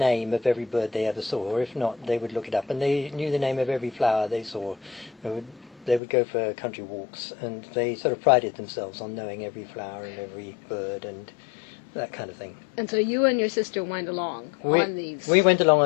of every bird they ever saw, or if not, they would look it up, and they knew the name of every flower they saw. They would go for country walks, and they sort of prided themselves on knowing every flower and every bird and that kind of thing. And so you and your sister went along on these... We went along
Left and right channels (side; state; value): right; drops out; at 6.0 s